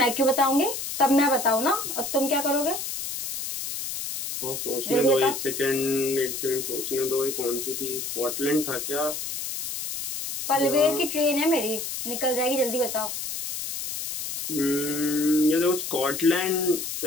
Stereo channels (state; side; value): noise; left; hiss, 5 dB below the sound